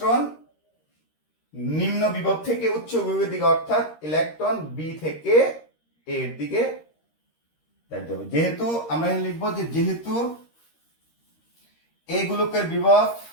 নিম্ন বিভব থেকে উচ্চ বিভবের দিকে, অর্থাৎ ইলেকট্রন বি থেকে এর দিকে যাইতে হবে। যেহেতু আমরা লিখবো যে যেহেতু এই গোলকের বিভব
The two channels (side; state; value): right; late; 13 ms